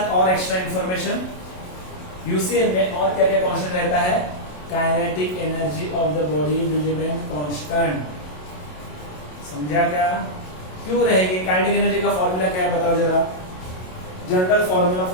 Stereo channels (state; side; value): late; right; 27 ms